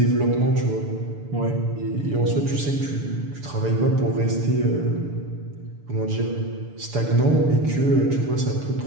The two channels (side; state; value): left; late; 6.9 ms